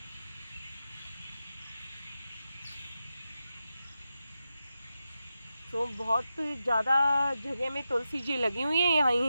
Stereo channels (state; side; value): inverted; both; correlation -0.90